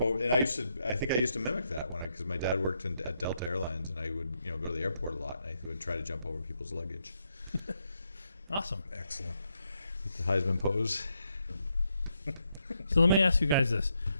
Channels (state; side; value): inverted; both; correlation -0.79